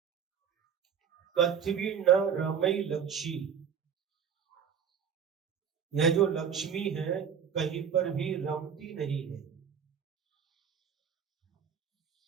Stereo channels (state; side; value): quieter; left; 7.6 dB